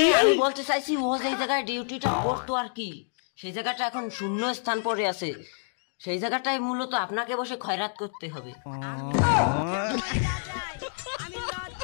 আমি বলতে চাইছি ও যে জায়গায় ডিউটিটা করতো আর কি, সেই জায়গাটা এখন শূন্য স্থান পড়ে আছে, সেই জায়গাটায় মূলত আপনাকে বসে খয়রাত করতে হবে।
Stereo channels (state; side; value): silent; right; digital silence